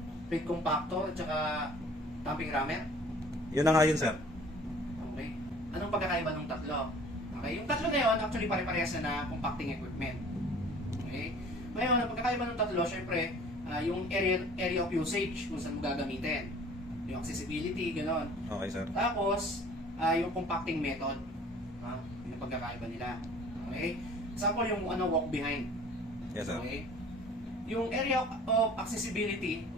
plate compactor, at saka tamping rammer? Yun na nga yun, sir. Okay. Anong pagkakaiba ng tatlo? Okay. Yung tatlo na yun, actually pare-parehas na compacting equipment. Okay. Ngayon, ang pagkakaiba ng tatlo, syempre, yung area of usage, kung saan mo gagamitin. Yung accessibility, gano'n. Okay, sir. Tapos, yung compacting method. Yung pagkakaiba nila. Okay? Example, yung walk behind. Yes, sir. Okay? Yung area of accessibility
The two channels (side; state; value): both; normal; correlation 0.49